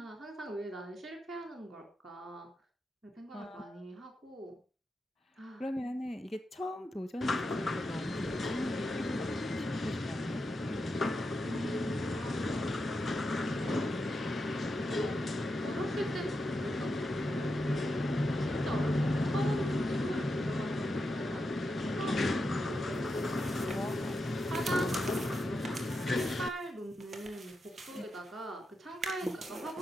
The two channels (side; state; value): both; normal; correlation 0.87